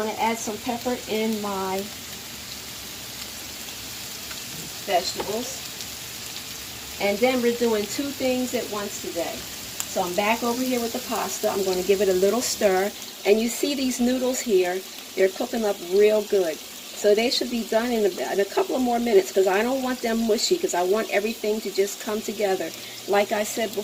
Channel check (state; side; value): identical; both; correlation 1.00